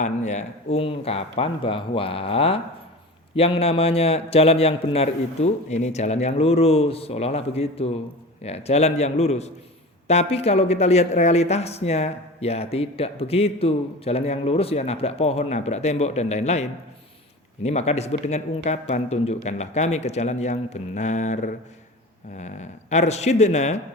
ya. Ungkapan bahwa yang namanya jalan yang benar itu ini jalan yang lurus, seolah-olah begitu. Ya, jalan yang lurus. Tapi kalau kita lihat realitasnya, ya tidak begitu. Jalan yang lurus ya nabrak pohon, nabrak tembok, dan lain-lain. Ini maka disebut dengan ungkapan, tunjukkanlah kami ke jalan yang benar. Arsyidna,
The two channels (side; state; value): both; normal; correlation 0.33